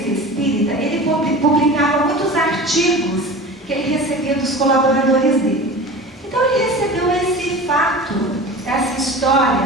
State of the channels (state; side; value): normal; both; correlation 0.35